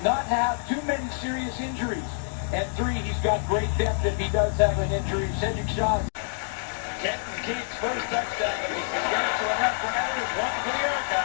not have too many serious injuries. And 3, he's got great depth if he does have an injury. Cedric Shaw. Kenton Keith's first touchdown of the Saskatchewan RoughRiders. 1 for the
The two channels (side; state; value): right; silent; digital silence